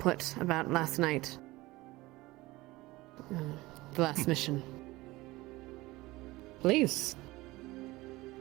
about last night? the last mission. Please.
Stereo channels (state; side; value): quieter; left; 20.0 dB